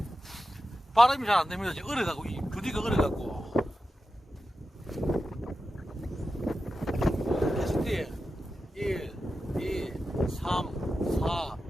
발음이 잘 안 됩니다. 지금 얼어가고, 이 부디가 얼어가고. 캐스팅 1, 2, 3, 4,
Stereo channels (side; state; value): both; normal; correlation 0.91